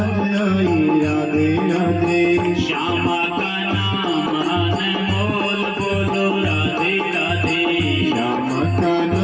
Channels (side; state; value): both; identical; correlation 1.00